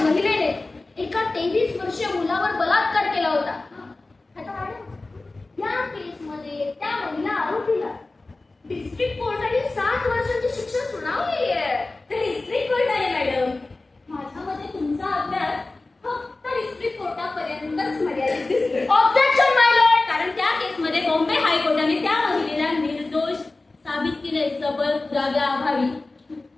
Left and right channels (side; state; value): right; quieter; 3.2 dB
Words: महिलेने एका 23 वर्षीय मुलावर बलात्कार केला होता. आता मॅडम या केसमध्ये त्या महिला आरोपीला डिस्ट्रिक्ट कोर्टाने 7 वर्षांची शिक्षा सुनावली आहे. ते डिस्ट्रिक्ट कोर्ट आहे मॅडम. माझ्या मते तुमचा अभ्यास फक्त डिस्ट्रिक्ट कोर्टापर्यंतच मर्यादित दिसतो. ऑब्जेक्शन माय लॉर्ड. कारण त्या केसमध्ये बॉम्बे हायकोर्टाने त्या महिलेला निर्दोष साबित केले सबळ पुराव्याअभावी.